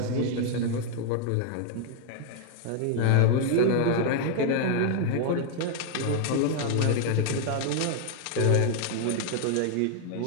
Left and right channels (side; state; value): both; different; correlation 0.00